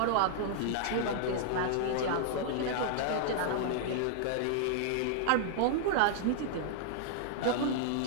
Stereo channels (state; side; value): different; both; correlation -0.01